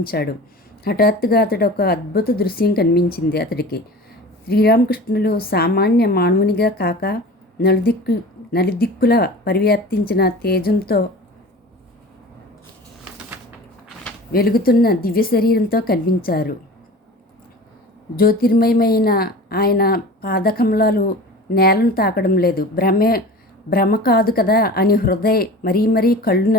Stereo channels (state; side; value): normal; both; correlation 0.37